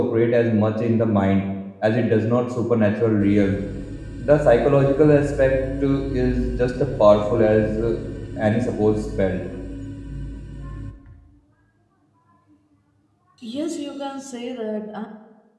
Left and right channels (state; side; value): identical; both; correlation 1.00